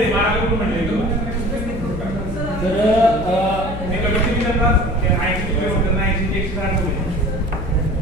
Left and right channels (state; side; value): noise; left; hum, 9 dB below the sound